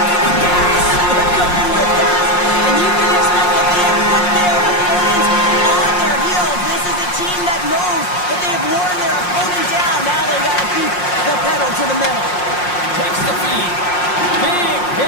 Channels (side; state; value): right; late; 5.6 ms